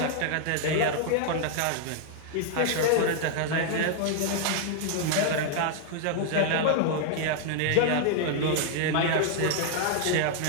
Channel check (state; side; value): different; both; correlation 0.00